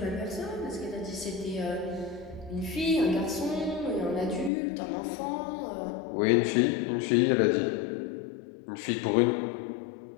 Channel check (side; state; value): right; drops out; at 4.5 s